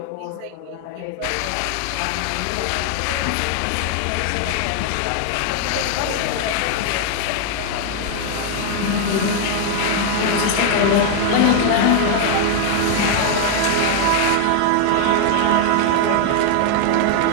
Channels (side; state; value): both; different; correlation 0.00